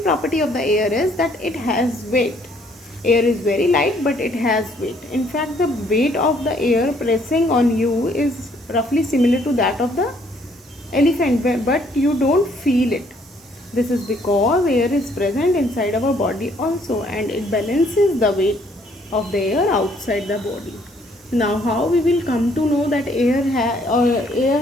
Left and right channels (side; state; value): both; normal; correlation 0.65